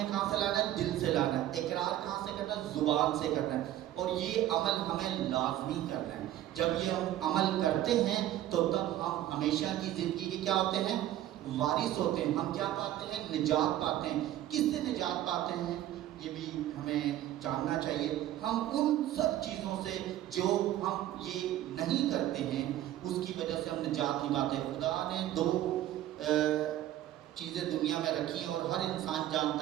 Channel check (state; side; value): quieter; left; 13.2 dB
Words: کہاں سے لانا ہے؟ دل سے لانا ہے۔ اقرار کہاں سے کرنا ہے؟ زبان سے کرنا ہے۔ اور یہ عمل ہمیں لازمی کرنا ہے۔ جب یہ ہم عمل کرتے ہیں تو تب ہم ہمیشہ کی زندگی کے کیا ہوتے ہیں؟ وارث ہوتے ہیں۔ ہم کیا پاتے ہیں؟ نجات پاتے ہیں۔ کس سے نجات پاتے ہیں؟ یہ بھی ہمیں جاننا چاہیے۔ ہم ان سب چیزوں سے جو ہم یہ نہیں کرتے ہیں اس کی وجہ سے ہم نجات نہیں پاتے۔ خدا نے 2 چیزیں دنیا میں رکھی ہیں اور ہر انسان